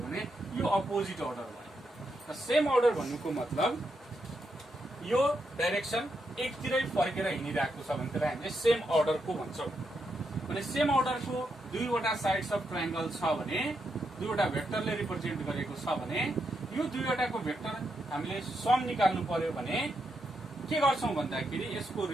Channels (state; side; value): normal; both; correlation 0.82